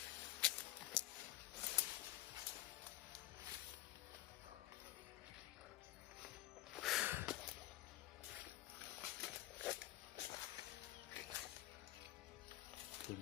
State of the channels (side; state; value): right; quieter; 15.7 dB